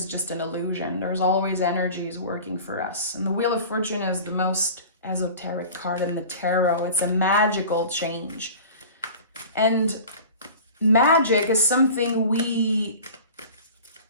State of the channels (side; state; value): both; inverted; correlation -0.39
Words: just an illusion. There's always energies working for us. And the Wheel of Fortune is the most esoteric card in the tarot. It's a magical change. And magic is something we